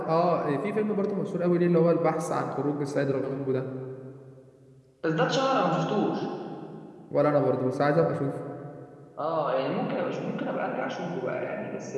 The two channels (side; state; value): both; identical; correlation 1.00